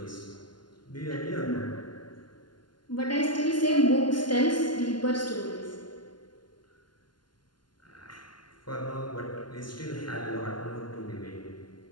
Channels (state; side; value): late; right; 0.71 ms